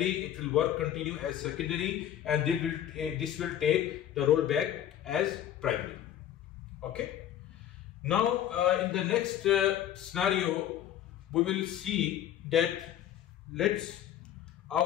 It will continue as secondary, and this will take the role back as primary. Okay. Now in the next scenario, we will see that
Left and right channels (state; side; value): quieter; right; 11.1 dB